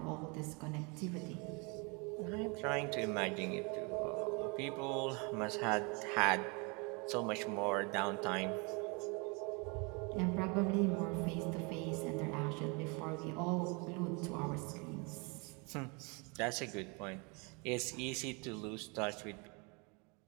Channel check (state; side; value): quieter; left; 31.2 dB